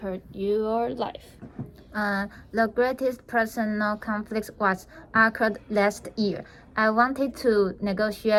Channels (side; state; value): both; identical; correlation 1.00